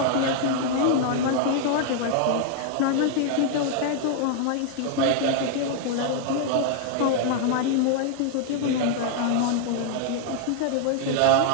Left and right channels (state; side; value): different; both; correlation 0.00